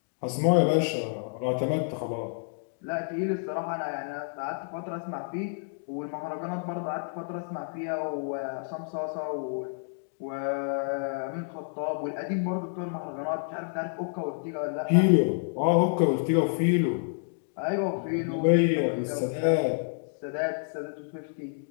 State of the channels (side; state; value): right; silent; digital silence